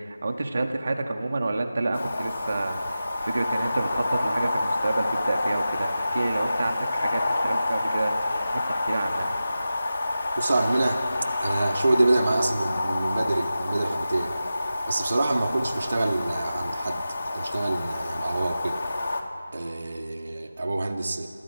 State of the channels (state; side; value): inverted; both; correlation -0.93